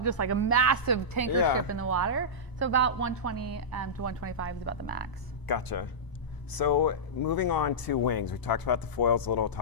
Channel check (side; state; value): right; late; 1.0 ms